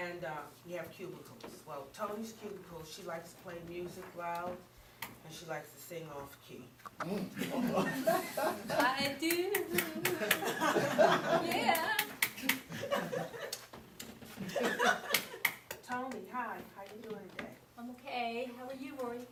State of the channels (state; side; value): identical; both; correlation 1.00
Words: we have cubicles. Well, Tony's cubicle, she likes to play music loud, and she likes to sing off key. I do. Yeah. Tony, hi. How you doing today? I'm okay. How are you, Rory?